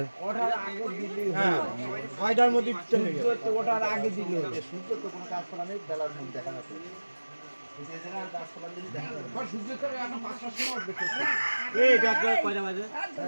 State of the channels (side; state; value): both; inverted; correlation -1.00